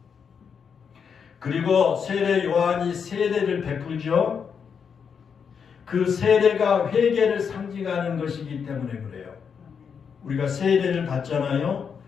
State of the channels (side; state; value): right; quieter; 6.7 dB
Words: 그리고 세례 요한이 세례를 베풀죠. 그 세례가 회개를 상징하는 것이기 때문에 그래요. 우리가 세례를 받잖아요.